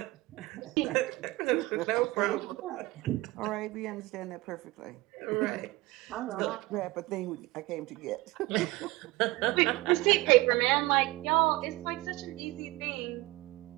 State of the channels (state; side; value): quieter; left; 20.6 dB